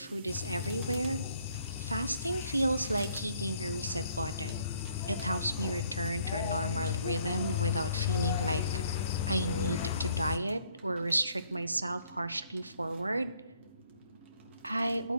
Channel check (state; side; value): inverted; both; correlation -0.65